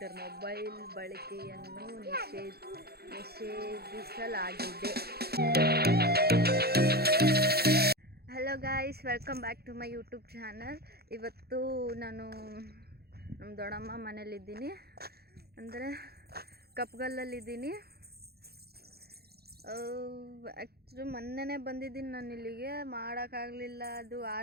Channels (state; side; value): late; left; 0.46 ms